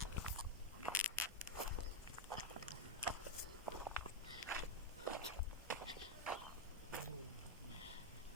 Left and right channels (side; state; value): both; normal; correlation 0.02